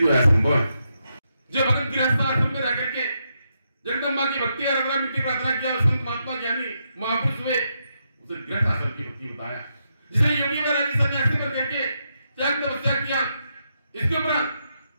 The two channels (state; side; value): inverted; both; correlation -0.82